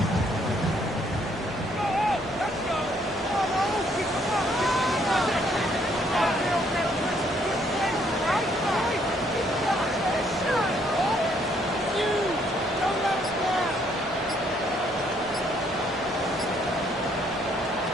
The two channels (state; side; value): normal; both; correlation 0.67